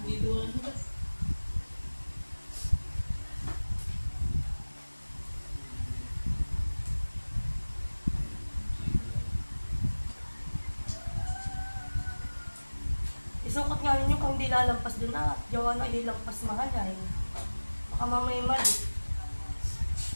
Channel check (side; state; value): both; inverted; correlation -1.00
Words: Isukot nga ninyo kung di lalampas doon na. Gawa na ililampas mahal ay. Baka mamaya mali.